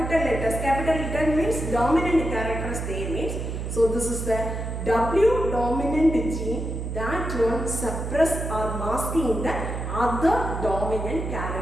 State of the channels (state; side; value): noise; right; hum, 4 dB below the sound